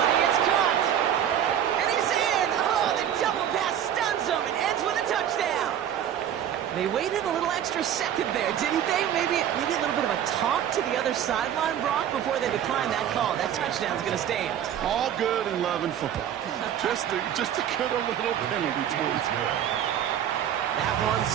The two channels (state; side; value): quieter; left; 10.0 dB